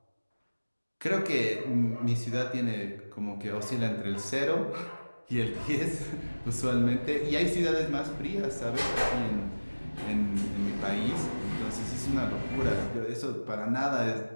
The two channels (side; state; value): both; inverted; correlation -1.00